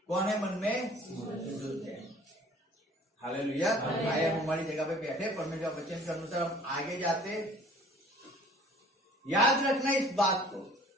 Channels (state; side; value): normal; both; correlation 0.52